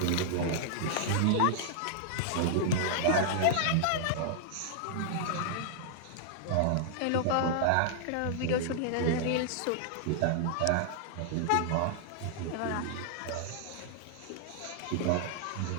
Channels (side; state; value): both; different; correlation -0.01